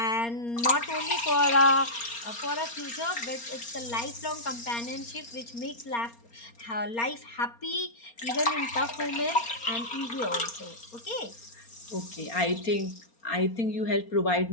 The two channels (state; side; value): late; right; 4.3 ms